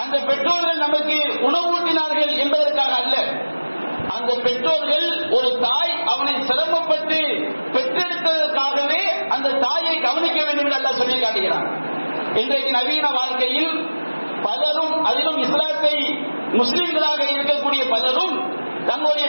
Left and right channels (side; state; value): both; inverted; correlation -1.00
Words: அந்த பெற்றோர்கள் நமக்கு உணவூட்டினார்கள் என்பதற்காக அல்ல. அந்த அந்த பெற்றோர்கள் ஒரு தாய் அவனை சிரமப்பட்டு பெற்றெடுத்ததற்காகவே அந்த தாயை கவனிக்க வேண்டும் என்று அல்லாஹ் சொல்லி காட்டுகிறான். இன்றைக்கு நவீன வாழ்க்கையில் பலரும், அதிலும் இஸ்லாத்தை முஸ்லிம்களாக இருக்கக்கூடிய பலரும் தங்களுடைய